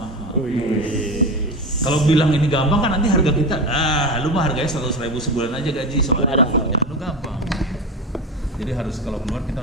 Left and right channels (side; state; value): both; normal; correlation 0.23